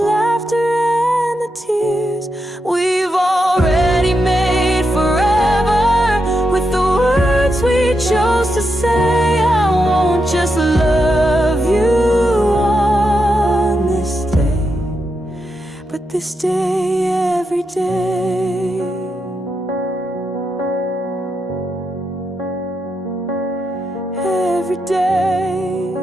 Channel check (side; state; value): both; normal; correlation 0.85